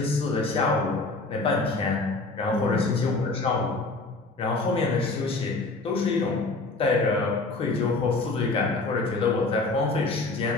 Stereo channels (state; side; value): quieter; right; 3.4 dB